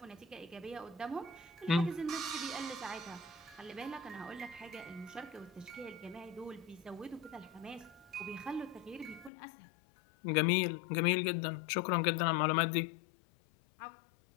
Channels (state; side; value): drops out; right; at 9.3 s